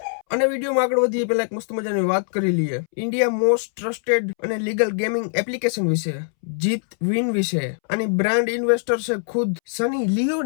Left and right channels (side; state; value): right; silent; 64 dB below the other